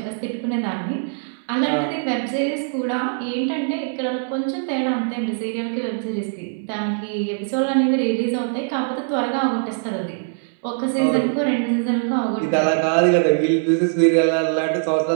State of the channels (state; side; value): silent; left; 64 dB below the other